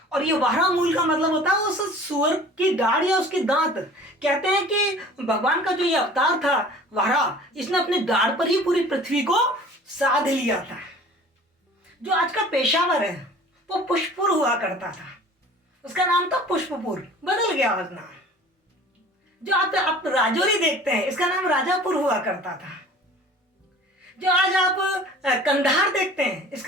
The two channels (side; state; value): both; normal; correlation 0.46